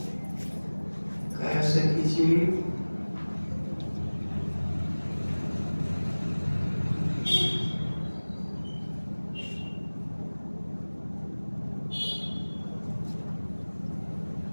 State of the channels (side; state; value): both; inverted; correlation -1.00